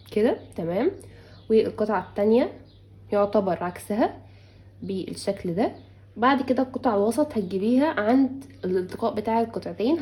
كده، تمام، والقطعه التانية يعتبر عكسها بالشكل ده. بعد كده القطعه الوسط هتجيبيها عند الالتقاء بتاع القطعتين،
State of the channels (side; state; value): both; identical; correlation 1.00